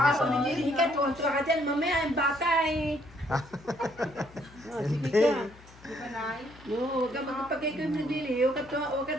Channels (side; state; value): left; noise; hum, 23 dB below the sound